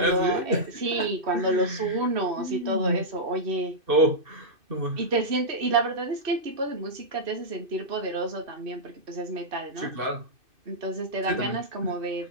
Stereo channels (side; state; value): left; late; 2.6 ms